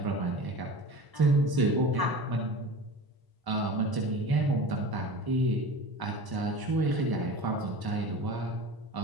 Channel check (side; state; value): left; late; 1.0 ms